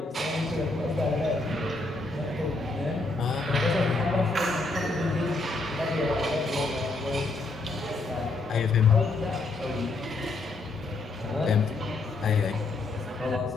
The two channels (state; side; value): quieter; right; 3.3 dB